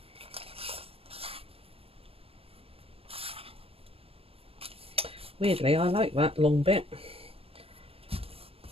Weirdly, I like that long bit.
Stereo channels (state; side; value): late; left; 0.28 ms